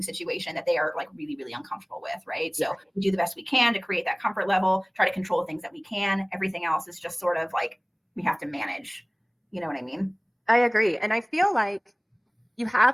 situation that they are like really, really uncomfortable with, right? So we do the best we can to create that comfort level, try to control things that we can. Everything else is just sort of like we have to manage. You know what I mean? I agree. And I feel like you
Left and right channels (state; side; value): identical; both; correlation 1.00